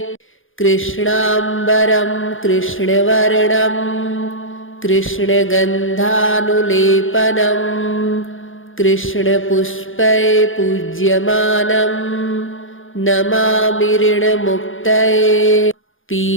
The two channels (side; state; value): right; late; 0.58 ms